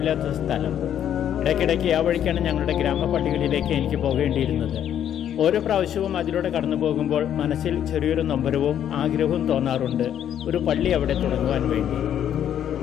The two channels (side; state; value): right; quieter; 10.0 dB